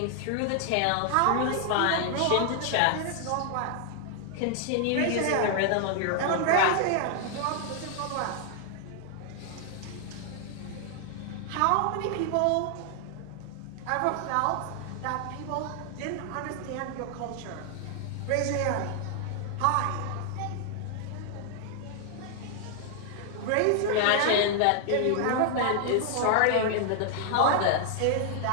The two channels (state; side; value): different; both; correlation 0.00